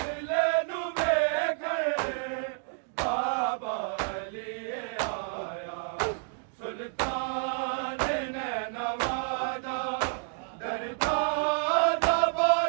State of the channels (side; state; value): left; silent; 58 dB below the other